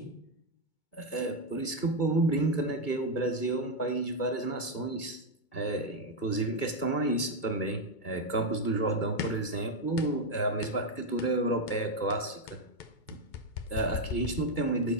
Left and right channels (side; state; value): right; late; 2.2 ms